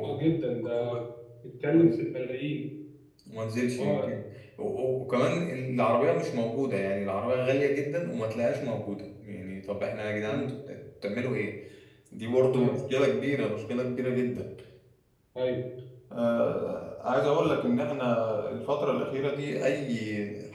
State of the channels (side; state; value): both; identical; correlation 1.00